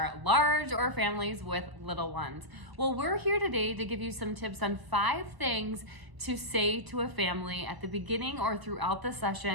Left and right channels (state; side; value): late; left; 1.0 ms